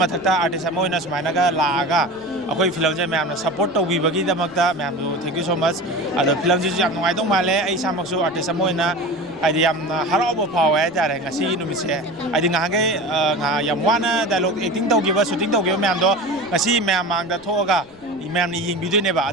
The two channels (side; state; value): right; noise; rumble, 27 dB below the sound